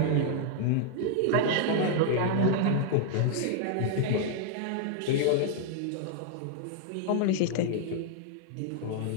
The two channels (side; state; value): both; different; correlation 0.00